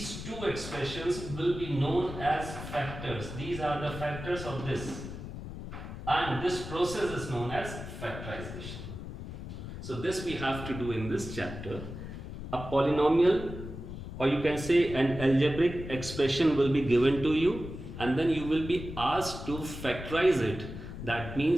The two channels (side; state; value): left; noise; rumble, 9 dB below the sound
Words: two expressions will be known as factors. These are the factors of this. And this process is known as factorization. So this we have to do in this chapter. A polynomial, or you can say an algebraic expression, will be given to you, and then you will be asked to factorize it. That